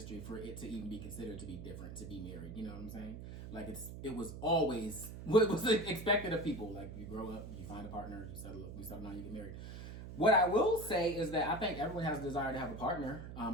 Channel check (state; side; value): noise; right; hum, 10 dB below the sound